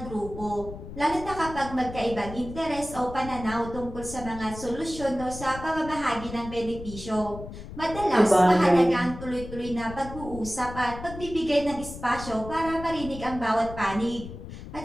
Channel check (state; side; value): noise; left; rumble, 12 dB below the sound